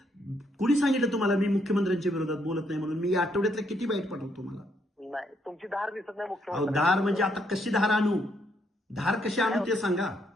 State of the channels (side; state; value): both; normal; correlation 0.74